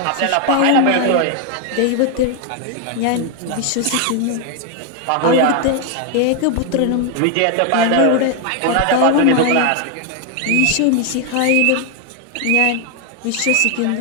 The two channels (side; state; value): both; different; correlation 0.01